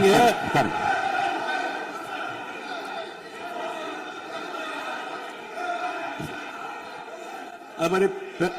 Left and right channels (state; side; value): identical; both; correlation 1.00